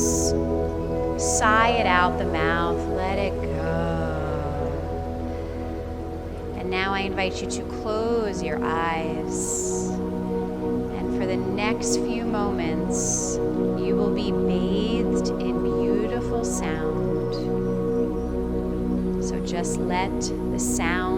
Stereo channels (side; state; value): both; identical; correlation 1.00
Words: Sigh it out the mouth, let it go. And now I invite you to close your eyes. And for the next few moments, you will be bathed in beautiful sound. So just let the